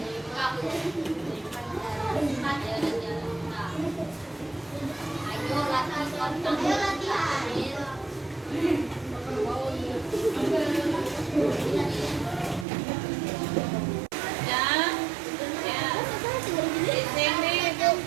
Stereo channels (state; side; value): drops out; left; at 12.7 s